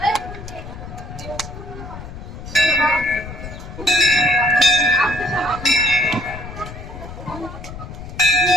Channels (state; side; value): noise; left; rumble, 12 dB below the sound